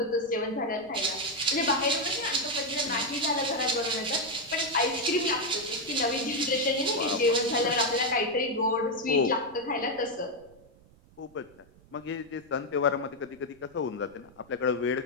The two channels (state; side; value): noise; right; rumble, 27 dB below the sound